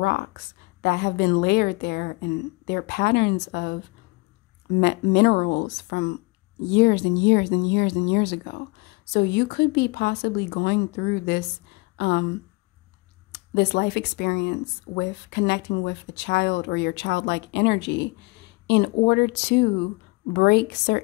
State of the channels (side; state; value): right; quieter; 26.2 dB